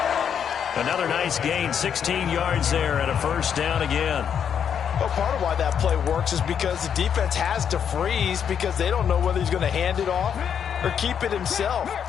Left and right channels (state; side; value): quieter; right; 8.0 dB